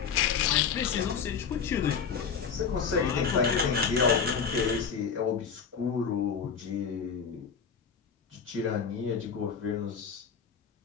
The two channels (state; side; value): quieter; right; 6.5 dB